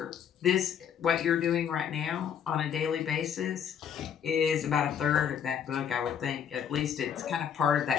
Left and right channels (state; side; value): quieter; right; 8.3 dB